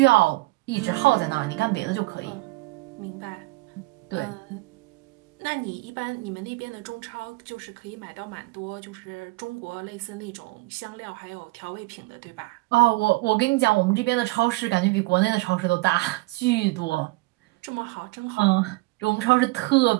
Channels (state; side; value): quieter; left; 22.5 dB